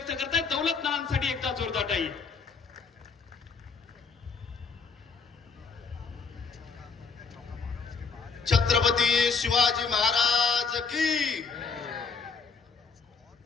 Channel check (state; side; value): quieter; right; 5.2 dB